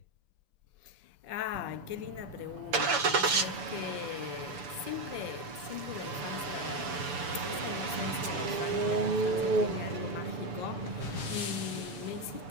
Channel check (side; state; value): left; late; 6.9 ms